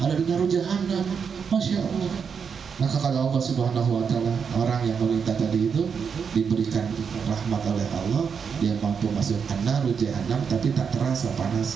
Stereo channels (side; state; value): left; quieter; 6.4 dB